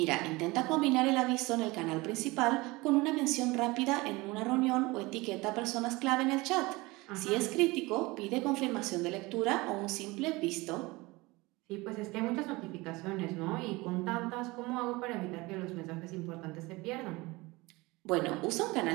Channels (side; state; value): left; quieter; 22.5 dB